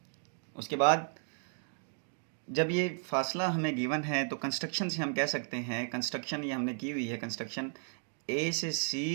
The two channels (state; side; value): silent; left; 55 dB below the other